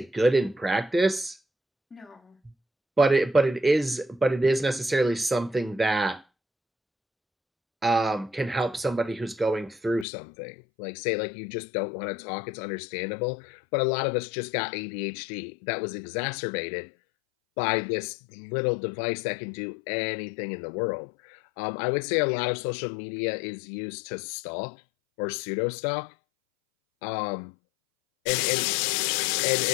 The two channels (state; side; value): drops out; right; at 10.1 s